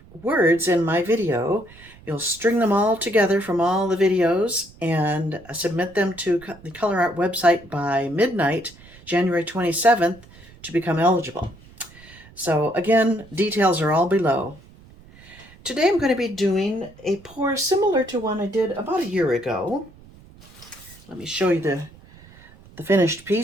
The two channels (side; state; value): right; noise; rumble, 23 dB below the sound